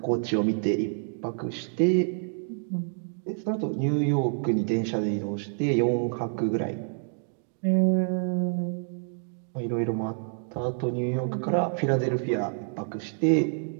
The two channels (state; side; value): silent; left; digital silence